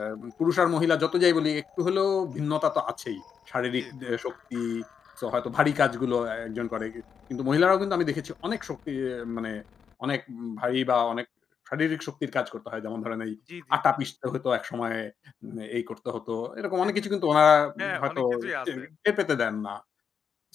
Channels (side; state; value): right; quieter; 6.9 dB